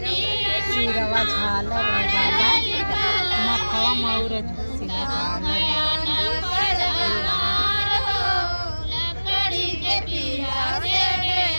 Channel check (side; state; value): both; inverted; correlation -1.00